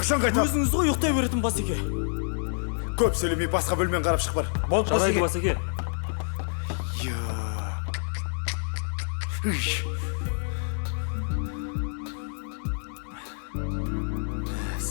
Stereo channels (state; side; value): silent; right; digital silence